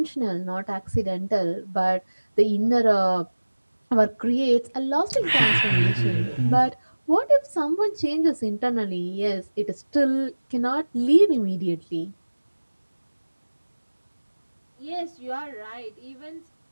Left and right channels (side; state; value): both; inverted; correlation -1.00